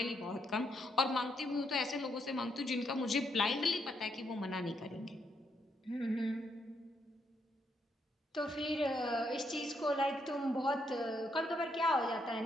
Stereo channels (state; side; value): normal; both; correlation 0.77